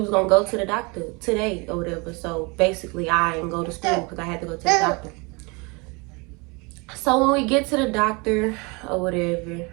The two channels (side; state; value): left; quieter; 28.8 dB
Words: going to go to the doctor today or whatever. So basically, I didn't go to school because I had to go to the doctor. So when we get to the doctor or whatever,